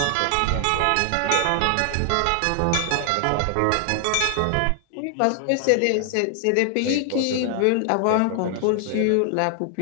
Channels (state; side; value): different; both; correlation 0.00